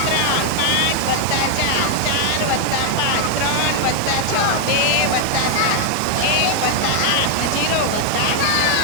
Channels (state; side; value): different; both; correlation 0.00